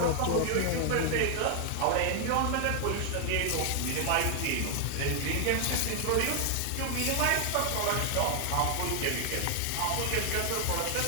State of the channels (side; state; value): both; different; correlation 0.00